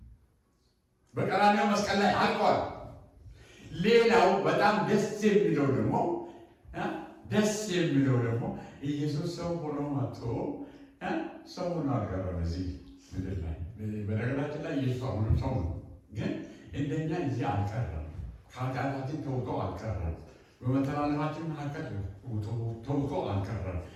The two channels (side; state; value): both; identical; correlation 1.00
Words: በቀራንዮ መስቀል ላይ አልቋል። ሌላው በጣም ደስ የሚለው ደግሞ ኢየሱስ ሰው ሆኖ መጥቶ ሰው ሆኖ አልቀረም እዚህ ምድር ላይ። በነገራችን ላይ ኢየሱስ አሁንም ሰው ነው፣ ግን እንደኛ እዚህ አልቀረም። ከኃጢአታችን ተውጦ አልቀረም። በመተላለፋችን መካከል ተውጦ አልቀረም።